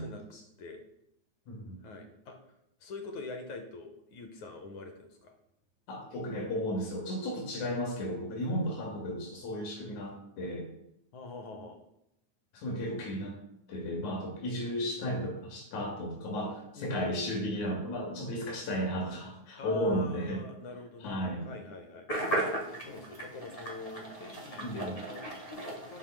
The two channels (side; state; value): right; late; 9.4 ms